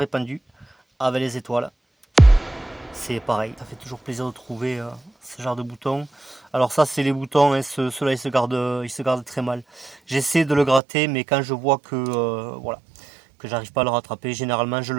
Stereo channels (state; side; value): drops out; left; at 10.8 s